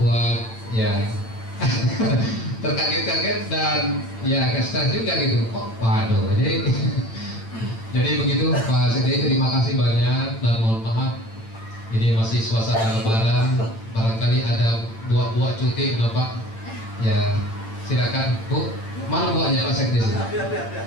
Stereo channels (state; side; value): late; right; 8.9 ms